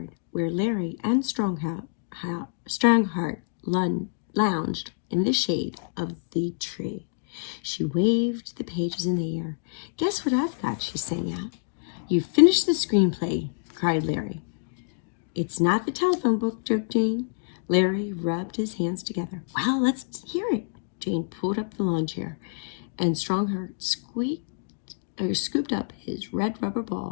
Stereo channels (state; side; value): silent; right; digital silence